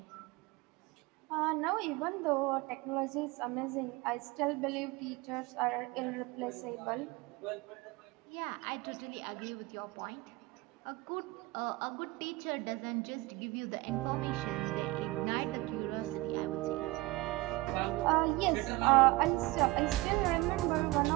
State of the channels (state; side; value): quieter; left; 21.2 dB